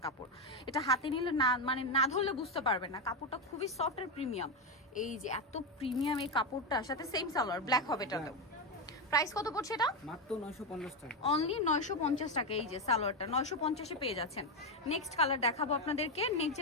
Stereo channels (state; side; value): normal; both; correlation 0.09